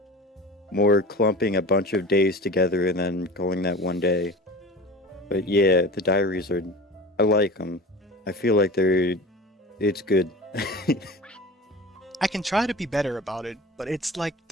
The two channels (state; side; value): normal; both; correlation 0.36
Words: more clumping a bunch of days together and then calling that one day. But yeah, the diaries are, I like them. I feel like it's good. I can try to be better about it, but it's like